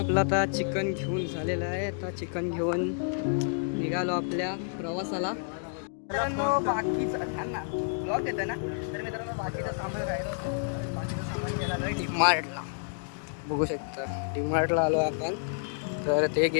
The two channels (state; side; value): silent; right; digital silence